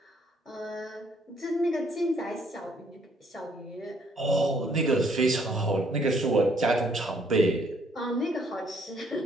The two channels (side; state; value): both; normal; correlation 0.66